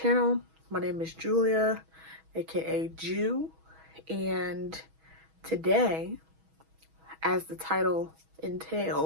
My name is Julia, aka Jew, and today, as the title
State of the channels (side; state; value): left; late; 6.2 ms